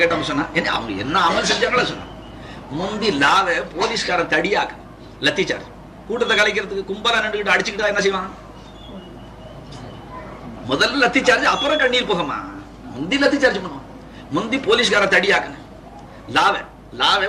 கேட்டவங்க சொன்னா என்ன அவங்க என்ன அமல் செஞ்சாங்களா சொன்னா முந்தி லாவை போலீஸ்காரன் தடியாக்கு லத்தி சார்ஜ் கூட்டத்தை கலைக்கிறதுக்கு கும்பலா நின்றுகிட்டு அடிச்சுக்கிட்டா என்ன செய்வான் முதல்ல லத்தி சார்ஜ் அப்புறம் கண்ணீர் போகமா முந்தி லத்தி சார்ஜ் பண்ணுவான் முந்தி போலீஸ்கார தடியாக்குன லாவை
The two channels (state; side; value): identical; both; correlation 1.00